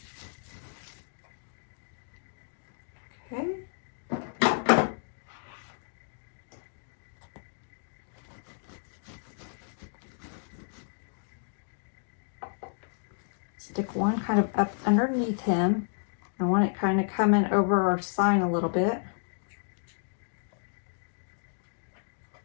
Okay. Stick one kind of up underneath him. I want it kind of coming over our sign a little bit.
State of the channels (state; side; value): silent; right; digital silence